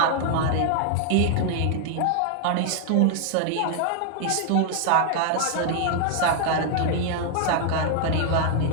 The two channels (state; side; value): different; both; correlation 0.00